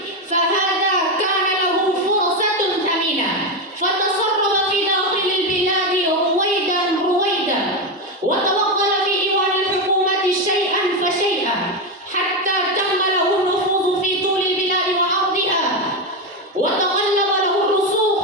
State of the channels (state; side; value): normal; both; correlation 0.11